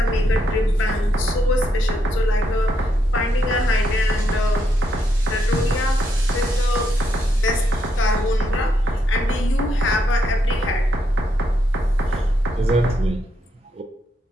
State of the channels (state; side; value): normal; both; correlation 0.79